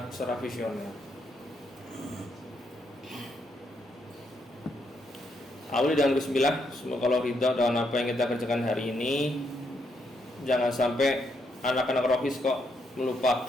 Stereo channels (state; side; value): normal; both; correlation 0.77